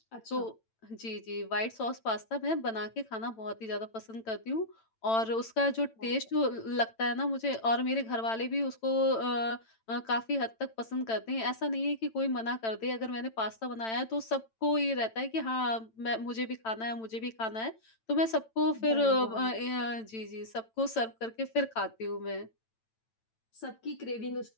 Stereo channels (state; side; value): late; right; 8.9 ms